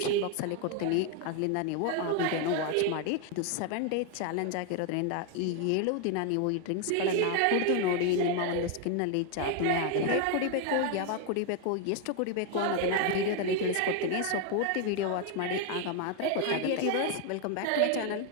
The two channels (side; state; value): both; different; correlation 0.01